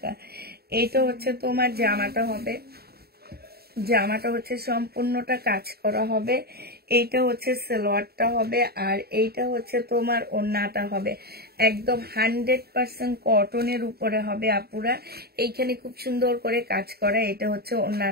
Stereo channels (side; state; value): left; late; 0.46 ms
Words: এইটা হচ্ছে তোমার জামাটা হবে। জামাটা হচ্ছে সম্পূর্ণটা কাজ করা হবে। এইটা হচ্ছে সালোয়ারটা হবে, আর এইটা হচ্ছে তোমার ওড়নাটা হবে। একদম 100% কটনের উপরে হবে আপুরা। এইখানে খুব সুন্দর করে কাজ করা। এটা হচ্ছে